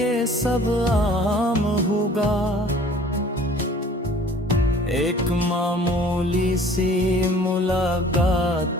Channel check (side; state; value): both; normal; correlation 0.51